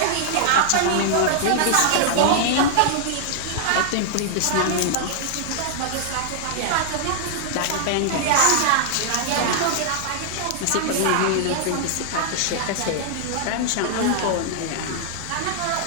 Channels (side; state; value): both; different; correlation -0.01